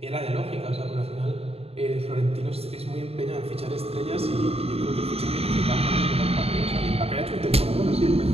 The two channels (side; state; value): left; late; 0.29 ms